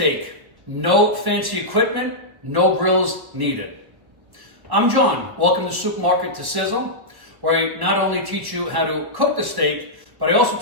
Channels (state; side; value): late; left; 1.2 ms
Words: No fancy equipment, no grills needed. I'm John, welcome to Supermarket to Sizzle, where I not only teach you how to cook the steak, but I also